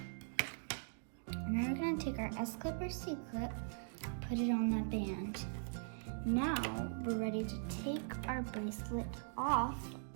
And then we're gonna take our S-clip or C-clip, put it on that band. Now we're ready to take our bracelet off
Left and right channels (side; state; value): left; silent; digital silence